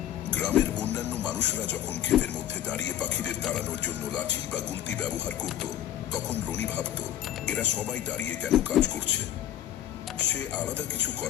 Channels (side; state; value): right; quieter; 11.8 dB